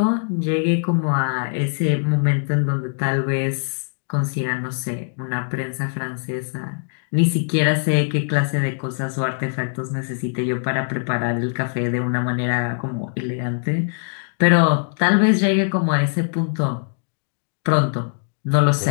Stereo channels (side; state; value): right; silent; digital silence